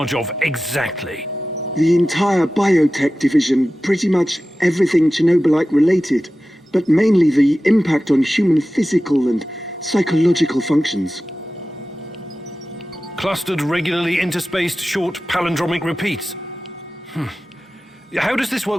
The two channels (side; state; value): both; normal; correlation 0.95